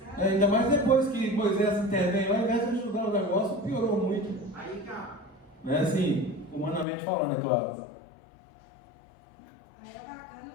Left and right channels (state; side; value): drops out; right; at 6.9 s